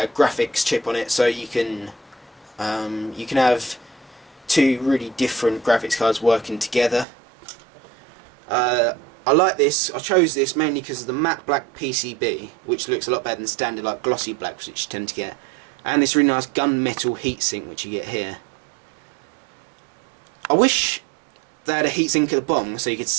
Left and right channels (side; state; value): left; drops out; at 7.1 s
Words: chip on it, so you can have two really different graphics cards working together. I like this. I chose this mainly because of the matte black PCB, which looks a lot better than standard like glossy blacks, which you tend to get, and this really nice gunmetal heatsink which you get here. I wish they had a heatsink at the bottom so you could